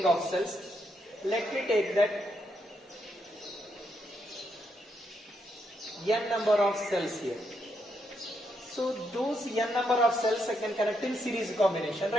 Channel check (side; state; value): both; normal; correlation 0.79